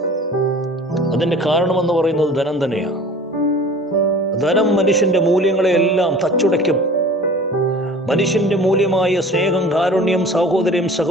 അതിന്റെ കാരണമെന്ന് പറയുന്നത് ധനം തന്നെയാണ്. ധനം മനുഷ്യന്റെ മൂല്യങ്ങളെ എല്ലാം തച്ചുടയ്ക്കും. മനുഷ്യന്റെ മൂല്യമായ സ്നേഹം, കാരുണ്യം, സഹോദര്യം,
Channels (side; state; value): both; normal; correlation 0.43